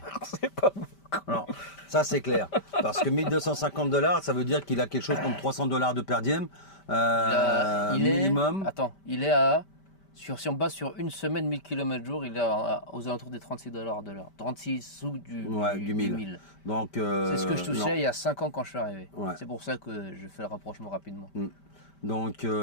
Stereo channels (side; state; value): right; late; 5.1 ms